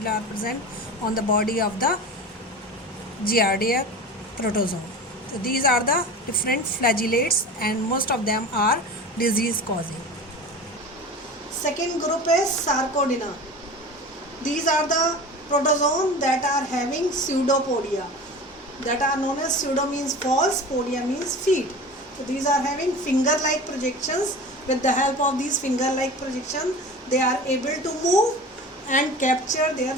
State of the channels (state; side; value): normal; both; correlation 0.34